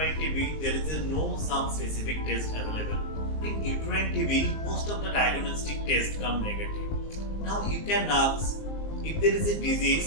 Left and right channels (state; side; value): late; right; 19 ms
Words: TB, there is no some specific test available. In uterine TB, most of the diagnostic tests come negative. Now, you can ask, if there is a